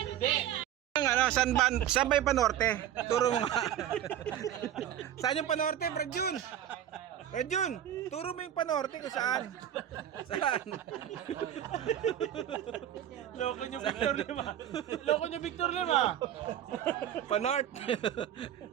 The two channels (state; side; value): quieter; left; 11.0 dB